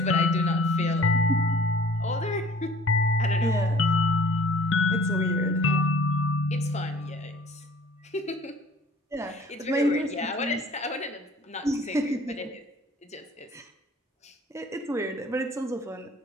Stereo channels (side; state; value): both; normal; correlation 0.51